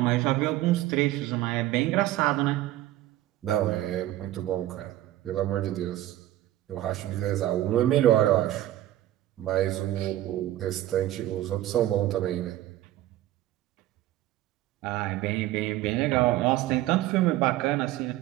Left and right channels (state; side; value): quieter; left; 14.5 dB